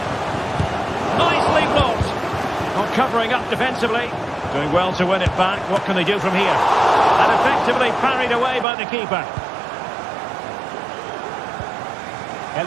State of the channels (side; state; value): left; drops out; at 8.7 s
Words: Nicely blocked. Not covering up defensively. Doing well to win it back. What can they do from here? And effectively parried away by the keeper.